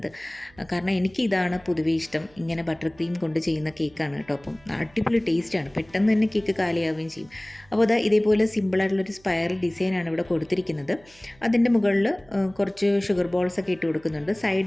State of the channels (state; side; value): noise; right; hum, 28 dB below the sound